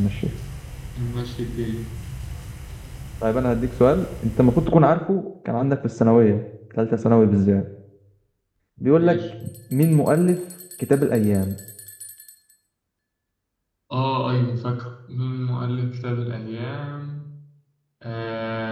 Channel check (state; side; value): identical; both; correlation 1.00